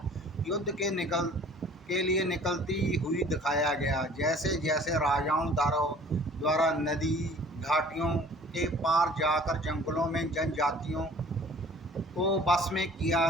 युद्ध के लिए निकलती हुई दिखाया गया। जैसे जैसे राजाओं द्वारा नदी घाटियों के पार जाकर जंगलों में जनजातियों को बस में किया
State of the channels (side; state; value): both; normal; correlation 0.50